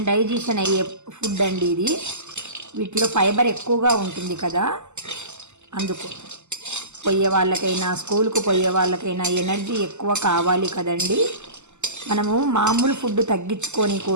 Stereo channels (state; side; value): late; left; 0.83 ms